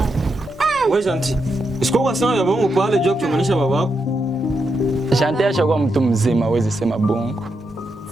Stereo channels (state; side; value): normal; both; correlation 0.84